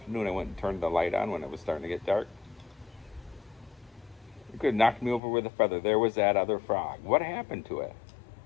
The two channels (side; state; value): right; drops out; at 5.2 s